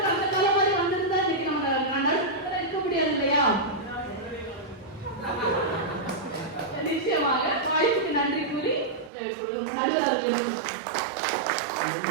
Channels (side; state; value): left; drops out; at 9.1 s